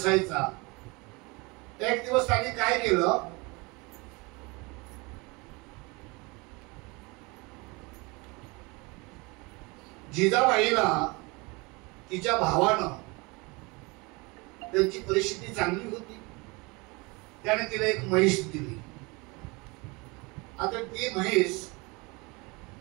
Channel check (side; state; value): left; quieter; 26.5 dB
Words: एक दिवस त्यांनी काय केलं, जिजाबाईला तिच्या भावानं, त्यांची परिस्थिती चांगली होती, त्याने तिला एक म्हैस दिली. आता ती म्हैस